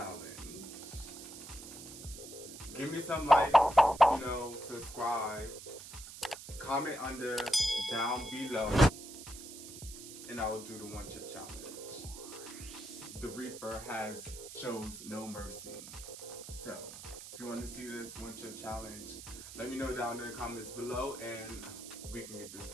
Give me some likes, you know, subscribe, comment down below, and I will do the 1 chip challenge. The Reaper shows no mercy. So, if you want to see this 1 chip challenge, let me know down in the comments below, and we can get this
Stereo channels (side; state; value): right; noise; hiss, 13 dB below the sound